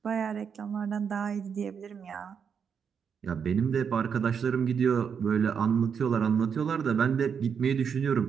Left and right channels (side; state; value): left; quieter; 6.9 dB